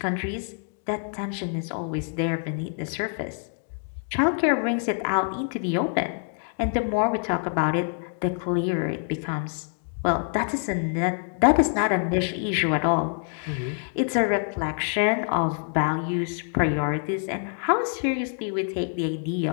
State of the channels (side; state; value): right; silent; 56 dB below the other